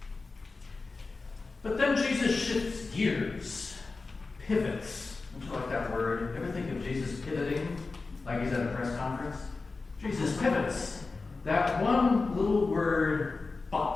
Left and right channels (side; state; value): right; quieter; 3.9 dB